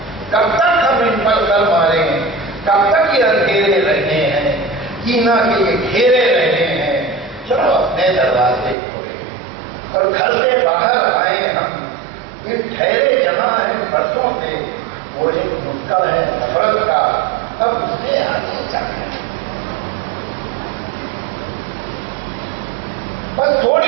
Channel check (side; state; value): left; drops out; at 8.8 s